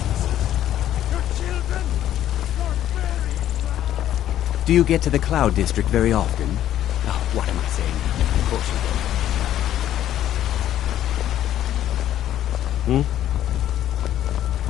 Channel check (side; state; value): right; quieter; 11.9 dB